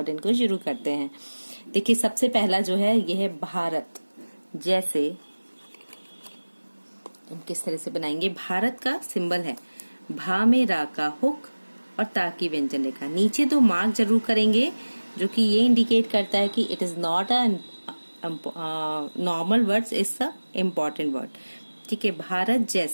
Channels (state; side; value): inverted; both; correlation -1.00